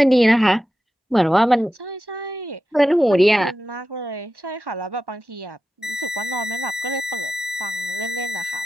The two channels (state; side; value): normal; both; correlation 0.92